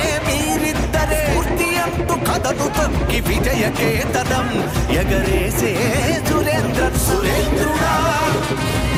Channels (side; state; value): both; identical; correlation 1.00